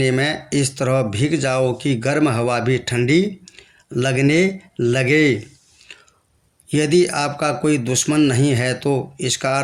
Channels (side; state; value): both; identical; correlation 1.00